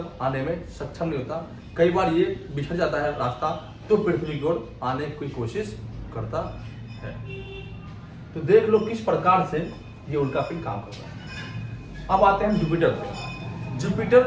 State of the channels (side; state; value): both; identical; correlation 1.00